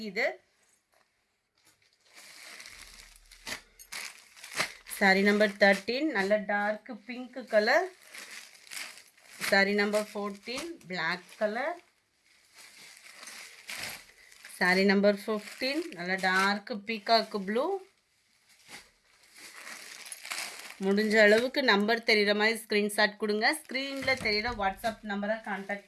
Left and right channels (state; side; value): identical; both; correlation 1.00